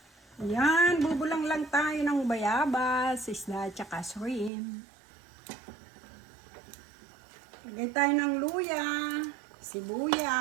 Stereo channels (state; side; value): drops out; left; at 4.5 s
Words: Yan, bubulang lang tayo ng bayabas, isda at saka shrimp. Lagay tayo ng luya,